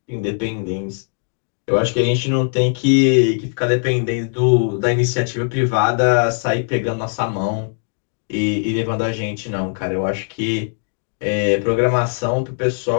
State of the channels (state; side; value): silent; right; digital silence